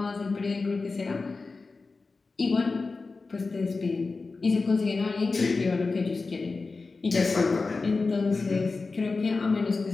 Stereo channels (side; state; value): right; quieter; 4.0 dB